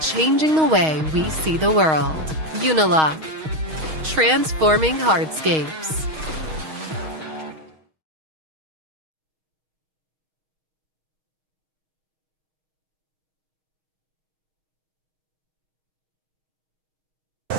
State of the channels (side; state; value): left; late; 6.4 ms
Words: the way we see the world. Unilock, transforming hardscapes.